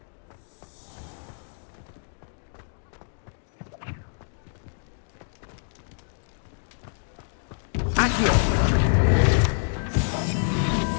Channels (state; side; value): silent; right; digital silence